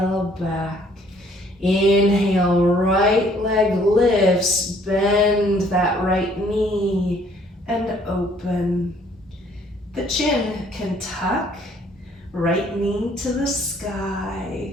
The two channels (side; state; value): both; normal; correlation 0.61